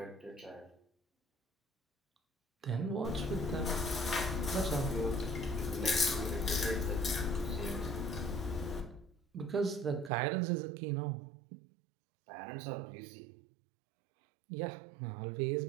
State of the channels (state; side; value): drops out; left; at 10.1 s